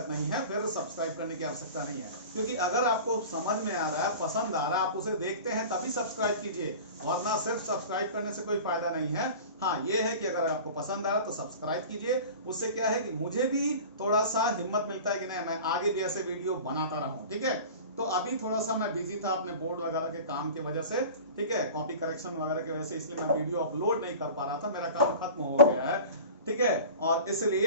नहीं है, फिर सब्सक्राइब करने की आवश्यकता नहीं है। क्योंकि अगर आपको समझ में आ रहा है, पसंद आ रहा है, आप उसे देखते हैं तभी सब्सक्राइब कीजिए, वरना सिर्फ सब्सक्राइब करने से कोई फायदा नहीं है। हाँ, ये है कि अगर आपको पसंद आ रहा है तो सब्सक्राइब कीजिए। उससे क्या है कि मुझे भी थोड़ा सा हिम्मत मिलता है कि नहीं, मैं आगे भी ऐसे वीडियो बनाता रहूं, ठीक है। तो अभी थोड़ा सा मैं बिजी था अपने बोर्ड वगैरह के काम की वजह से, ठीक है, कॉपी करेक्शन वगैरह की वजह से, इसलिए मैं वीडियो अपलोड नहीं कर पा रहा था। मेरा काम खत्म हो गया है, ठीक है, और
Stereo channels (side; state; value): both; inverted; correlation -0.38